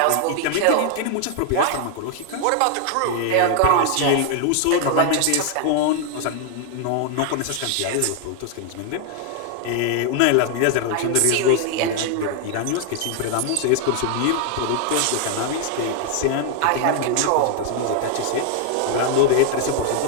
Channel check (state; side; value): different; both; correlation 0.00